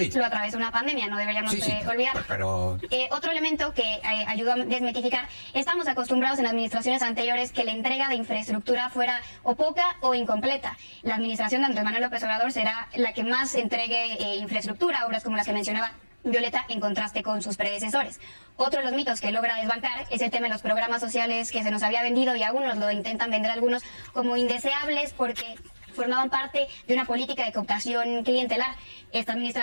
Lo atravesó una pandemia, no deberíamos olvidar. Pero otro elemento que ayudó a desmitificar, estamos acostumbrados en administraciones anteriores que la entrega de infraestructura fuera o poca o incompleta. La administración de Andrés Manuel López Obrador será la que más entregue infraestructura, obras como las que mencionaba Violeta, en contraste con sus predecesores. Otro de los mitos que logra desbancar es el tema de los programas sociales que se nos había vendido, y aún nos lo intentan vender algunos como indeseables porque formaban parte de una política de cooptación clientelar. Esta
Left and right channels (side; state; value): both; inverted; correlation -1.00